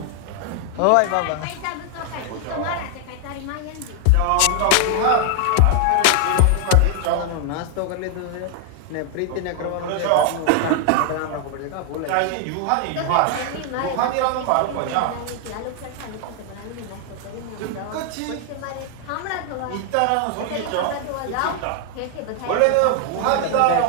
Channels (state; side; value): different; both; correlation 0.00